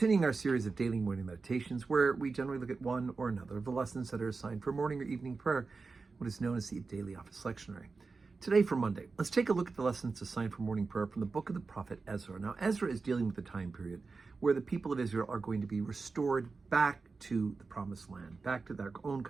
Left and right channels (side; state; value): left; quieter; 4.3 dB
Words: our series of daily morning meditations where we generally look at one or another of the lessons that are assigned for morning or evening prayer, what is known as the Daily Office Lectionary. Today for Monday, let's take a look at the lessons assigned for morning prayer from the book of the prophet Ezra. Now, Ezra is dealing with the time period where the people of Israel are going to be restored back to the promised land, back to their own